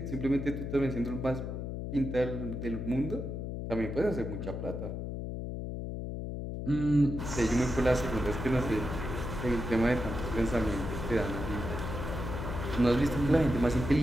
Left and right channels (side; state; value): left; noise; hum, 5 dB below the sound